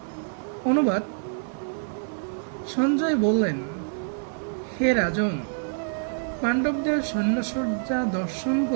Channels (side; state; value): left; silent; 61 dB below the other